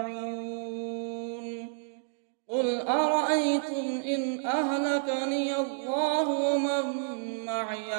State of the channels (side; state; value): left; silent; digital silence